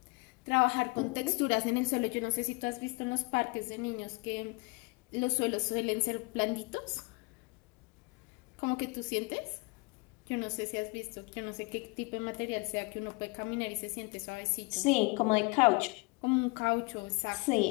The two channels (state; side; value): quieter; right; 27.2 dB